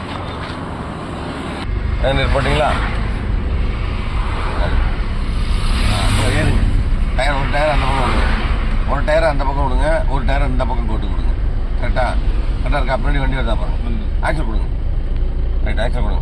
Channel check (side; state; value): both; identical; correlation 1.00